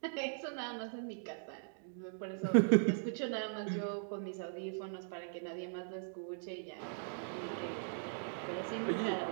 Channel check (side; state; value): left; silent; digital silence